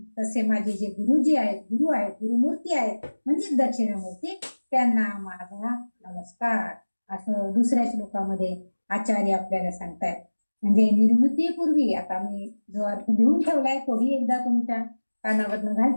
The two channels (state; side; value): inverted; both; correlation -1.00